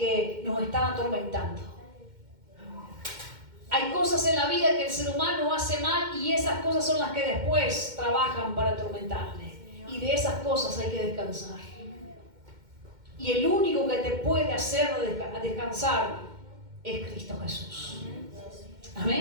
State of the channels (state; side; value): late; left; 2.1 ms